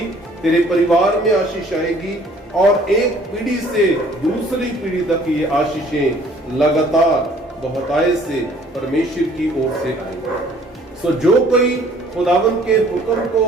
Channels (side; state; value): both; normal; correlation 0.57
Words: तेरे परिवार में आशीष आएगी और एक पीढ़ी से दूसरी पीढ़ी तक ये आशीषें लगातार बहुतायत से परमेश्वर की ओर से आएंगी। सो जो कोई खुदावन के हुक्म को